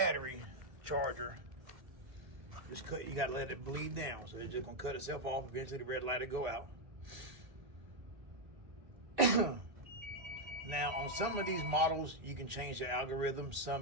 charger just cut. You gotta let it bleed down. So it's just gonna cut itself off. Eventually the red light will go out. Now on some of these models, you can change the algorithm.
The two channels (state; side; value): late; left; 1.8 ms